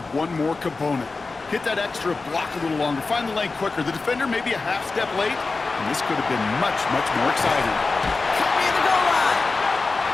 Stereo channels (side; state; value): right; quieter; 3.9 dB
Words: one more component. Hit that extra block a little longer, find the lane quicker. The defender may be a half step late, and this could have been much, much more exciting. Cut me at the goal line.